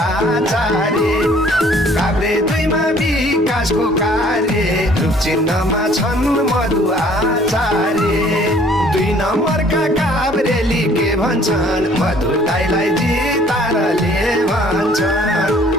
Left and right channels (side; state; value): both; normal; correlation 0.57